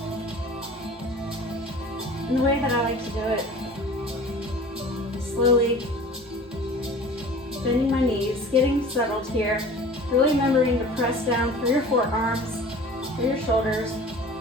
And the way that I like to do it, slowly bending my knees, getting settled here, really remembering to press down through your forearms, through your shoulders,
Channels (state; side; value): normal; both; correlation 0.42